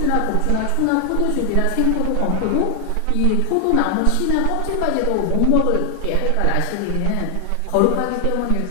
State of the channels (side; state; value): both; different; correlation 0.00